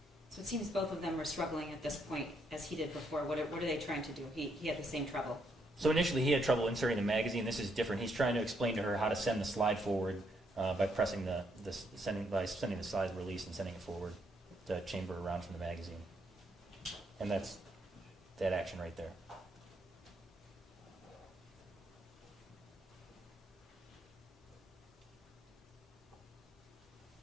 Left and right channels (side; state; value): both; normal; correlation 0.74